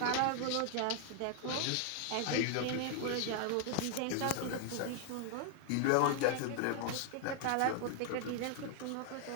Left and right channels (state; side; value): different; both; correlation 0.00